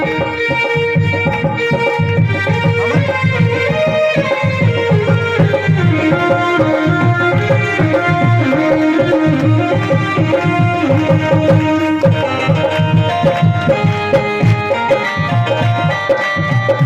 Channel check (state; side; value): identical; both; correlation 1.00